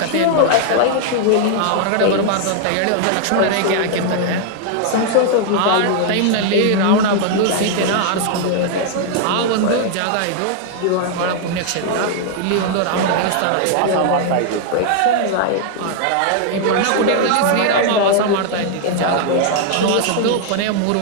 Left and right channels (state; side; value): different; both; correlation 0.00